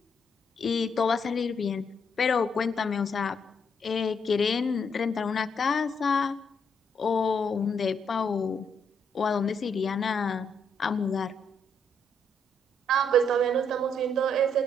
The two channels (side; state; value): both; normal; correlation 0.74